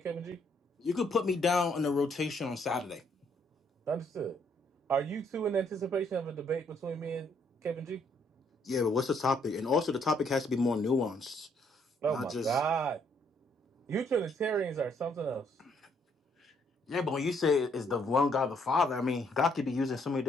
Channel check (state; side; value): normal; both; correlation 0.69